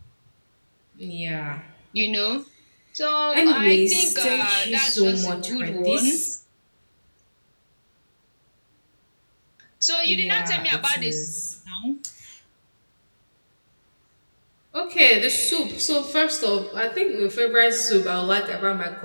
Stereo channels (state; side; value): inverted; both; correlation -1.00